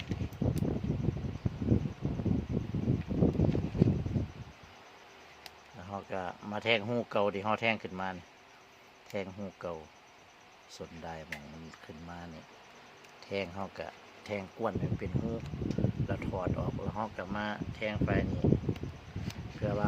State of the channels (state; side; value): identical; both; correlation 1.00